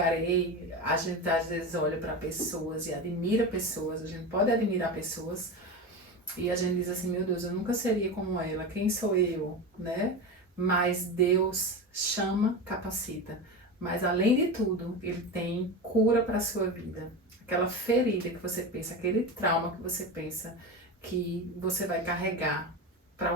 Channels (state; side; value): normal; both; correlation 0.23